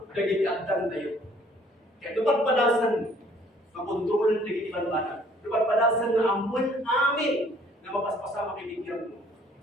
dagiti addan tayo. Kaya lupad-padasan, makontrolan dagiti banbanan. Lupad-padasan nga amon amin na mapaspasama itibiyat mo.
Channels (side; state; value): both; normal; correlation 0.59